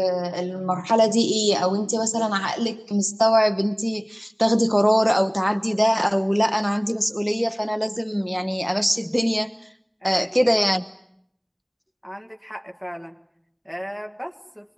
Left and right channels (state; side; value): identical; both; correlation 1.00